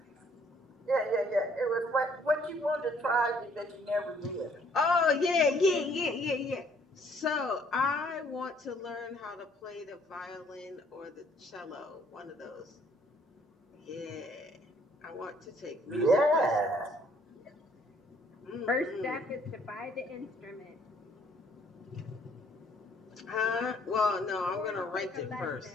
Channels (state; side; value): normal; both; correlation 0.63